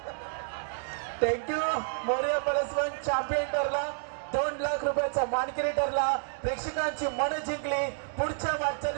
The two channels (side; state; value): left; silent; digital silence